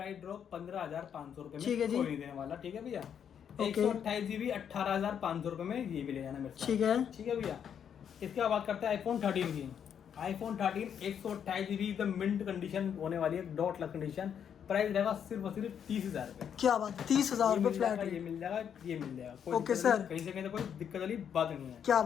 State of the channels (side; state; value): right; quieter; 8.3 dB